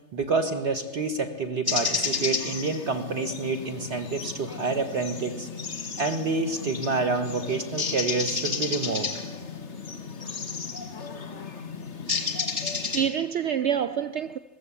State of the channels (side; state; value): left; late; 3.3 ms